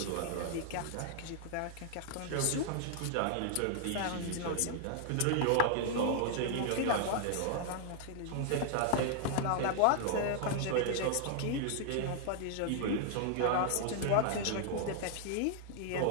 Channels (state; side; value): different; both; correlation 0.00